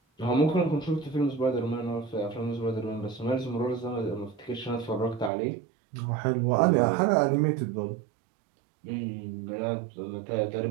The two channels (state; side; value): drops out; left; at 5.3 s